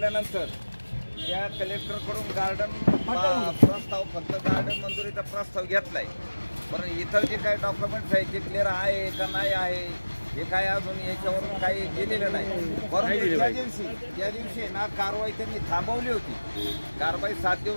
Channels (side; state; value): both; inverted; correlation -1.00